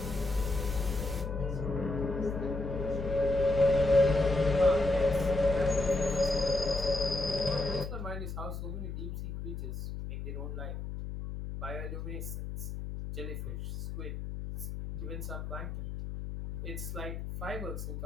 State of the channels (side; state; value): left; noise; hum, 6 dB below the sound